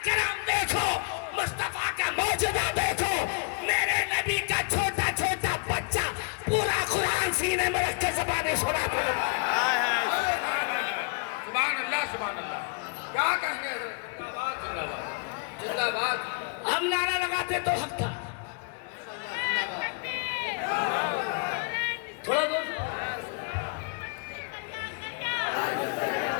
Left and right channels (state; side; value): quieter; right; 33.9 dB